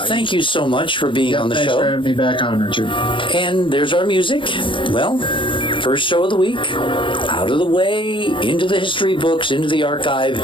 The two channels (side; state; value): right; late; 0.25 ms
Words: thank you so much for being on the show. Thanks for having me back on, Richard. And there's our music. Well, first show of the week, out of the way, into the history books, into the archive.